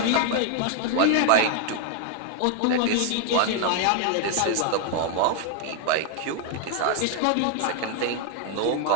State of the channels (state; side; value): different; both; correlation 0.00